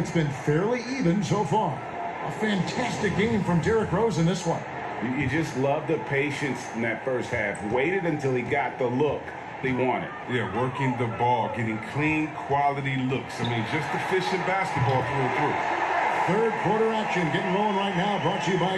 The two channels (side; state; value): both; identical; correlation 1.00